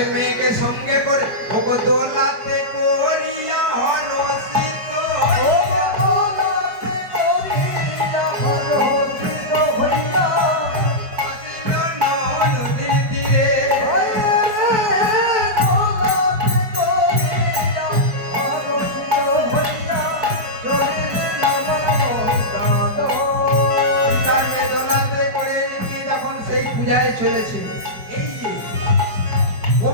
মেয়েকে সঙ্গে করে ওগো দোলাতে করিয়া হরসিত আসিল নদীর তীরে। সীতাকে দোলাতে করে নিয়ে যখন সেই পূজায় চলেছে, এই যে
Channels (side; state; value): left; late; 4.7 ms